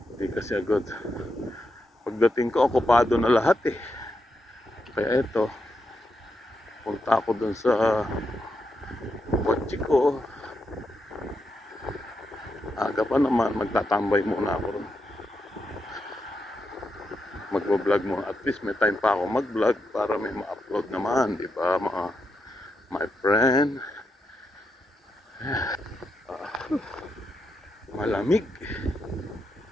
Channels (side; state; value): both; normal; correlation 0.84